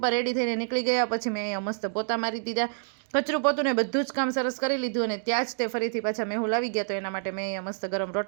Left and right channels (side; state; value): left; silent; digital silence